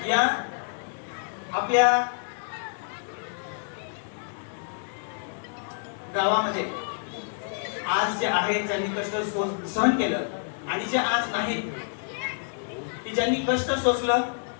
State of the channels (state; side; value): silent; right; digital silence